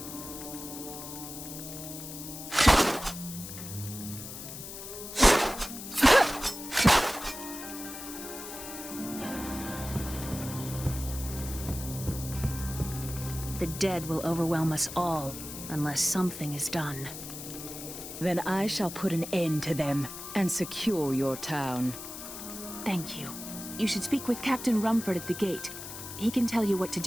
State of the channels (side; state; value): left; noise; hiss, 10 dB below the sound